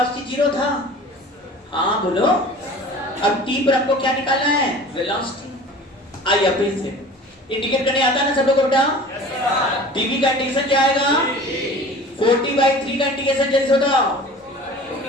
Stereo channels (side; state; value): both; normal; correlation 0.42